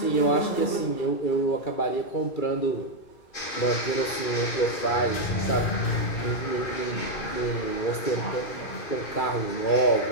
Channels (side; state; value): right; late; 2.3 ms